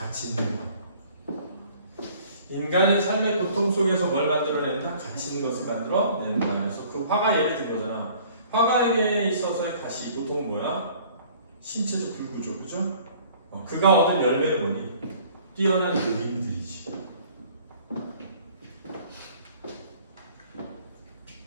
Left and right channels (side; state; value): both; inverted; correlation -0.53